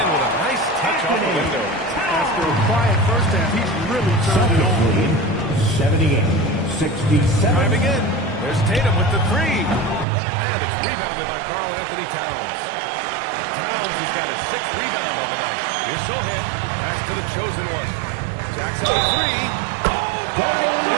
with a nice touch off the window. After a quiet first half, he's really turned it on. 78-67. Driving in. There's Tatum with the 3. And it's rebounded by Karl Anthony Towns. Towns has got his 6th rebound on the night. Here's Sohan. Pass to the chosen one. Jackson with 3. Oh, my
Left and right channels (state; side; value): drops out; left; at 10.1 s